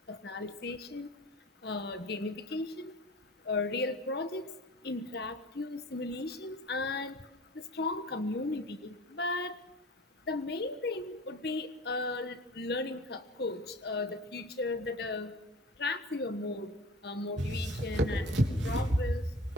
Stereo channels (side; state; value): both; normal; correlation 0.41